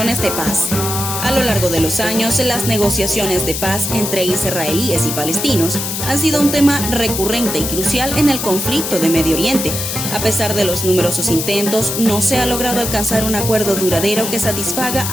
de paz. A lo largo de los años, las negociaciones de paz entre israelíes y palestinos han sido un tema recurrente y crucial en el conflicto de Medio Oriente. A pesar de los numerosos intentos, no se ha logrado alcanzar un acuerdo duradero que satisfaga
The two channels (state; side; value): noise; left; hiss, 3 dB below the sound